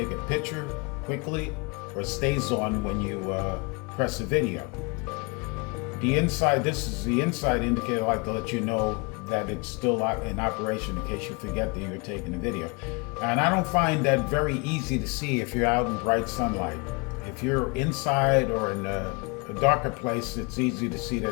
a picture quickly, or stays on when you press a video. This is the inside indicator. I like to let you know that it's still in operation in case you forget that you're taking a video. And I don't find that very easy to see if you're out in bright sunlight. If you're inside or in a darker place, it's easy to see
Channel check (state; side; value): quieter; right; 30.0 dB